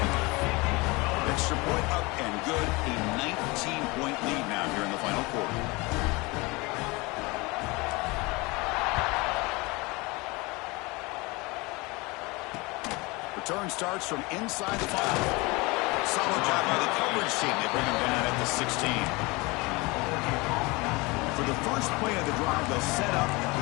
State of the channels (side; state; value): right; quieter; 24.8 dB